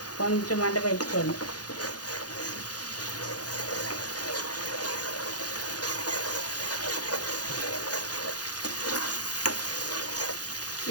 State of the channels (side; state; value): right; late; 0.69 ms